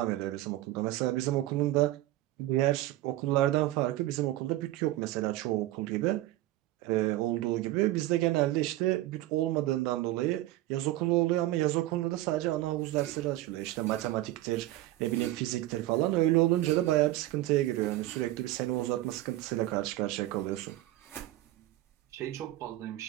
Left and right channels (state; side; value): quieter; left; 16.1 dB